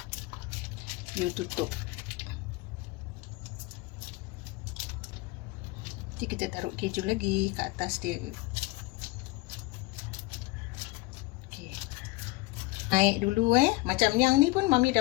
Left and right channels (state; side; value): quieter; right; 21.9 dB